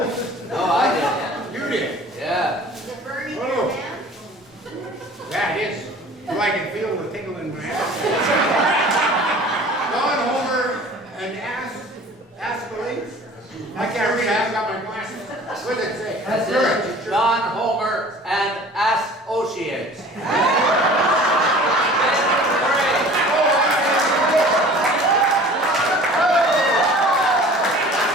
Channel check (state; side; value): normal; both; correlation 0.45